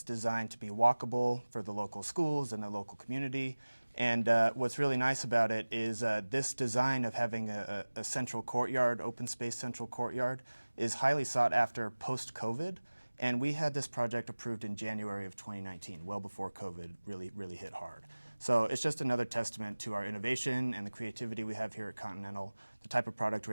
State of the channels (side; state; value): both; inverted; correlation -1.00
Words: designed to be walkable for the local schools and the local community. And what's really nice about it is this design of having a central courtyard, open space central courtyard, is highly sought after post-COVID. And we had this project approved in January of 2019, well before COVID really hit hard. So it's just another testament to our innovation and the creativity we have here at Continental, the type of product